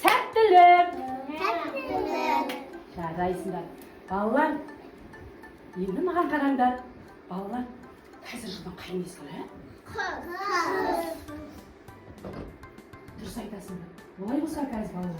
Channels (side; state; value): both; identical; correlation 1.00